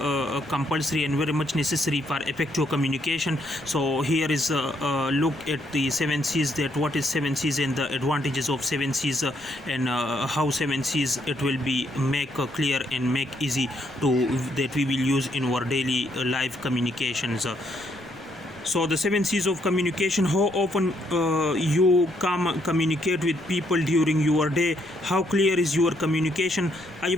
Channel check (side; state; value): left; noise; rumble, 25 dB below the sound